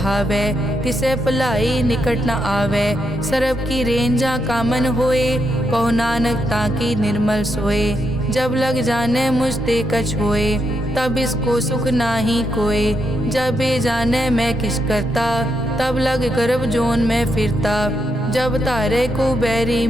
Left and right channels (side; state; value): both; normal; correlation 0.81